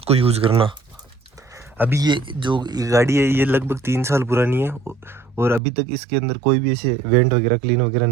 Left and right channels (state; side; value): drops out; left; at 5.6 s